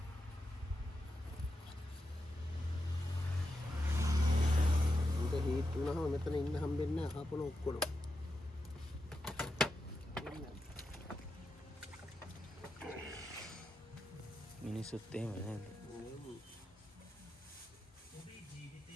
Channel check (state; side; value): normal; both; correlation 0.87